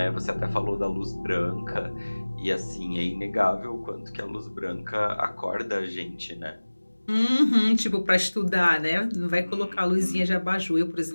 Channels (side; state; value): both; inverted; correlation -1.00